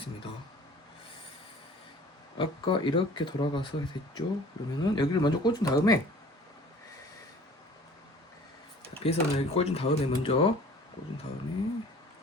아까 이렇게 돌아가서 됐죠. 그러면은 여기를 먼저 꽂은 다음에, 배선을 여기 꽂은 다음에 먼저 꽂은 다음에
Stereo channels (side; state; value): both; normal; correlation 0.48